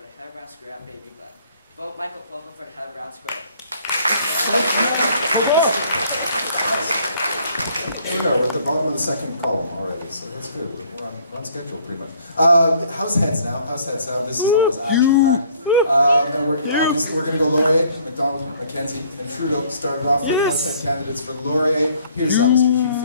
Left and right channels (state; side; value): inverted; both; correlation -0.59